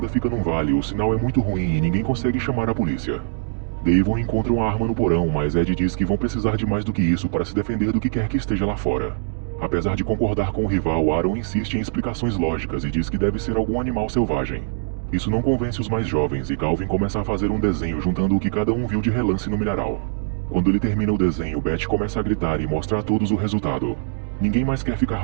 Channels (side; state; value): left; silent; digital silence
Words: fica num vale, o sinal é muito ruim e ninguém consegue chamar a polícia. Devon encontra uma arma no porão, mas Ed diz que vão precisar de mais do que isso para se defender do que quer que esteja lá fora. Apesar de concordar com o rival, Aaron insiste em explicações lógicas e diz que deve ser algum animal selvagem. Isso não convence os mais jovens e Calvin começa a fazer um desenho juntando o que cada um viu de relance no milharal. Quando ele termina o desenho, Beth começa a gritar e mostra a todos o resultado. Ninguém mais quer